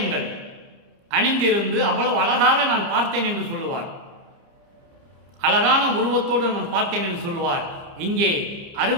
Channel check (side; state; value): left; late; 29 ms